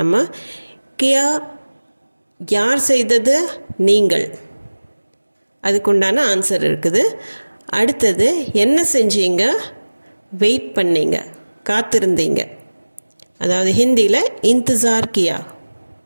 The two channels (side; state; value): both; inverted; correlation -1.00